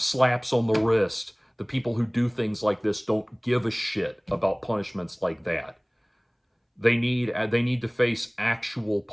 on the wrist. The people who do things like this don't give a shit about punishments like that. They need to face actual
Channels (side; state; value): both; identical; correlation 1.00